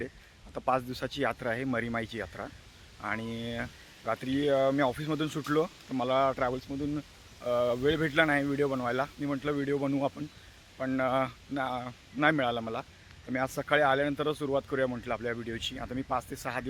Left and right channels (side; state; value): both; identical; correlation 1.00